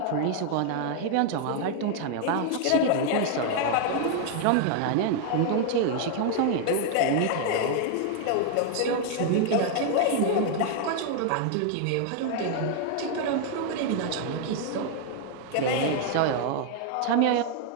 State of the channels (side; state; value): both; different; correlation 0.00